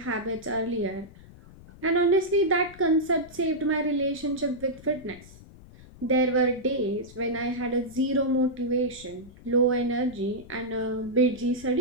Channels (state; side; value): noise; left; rumble, 20 dB below the sound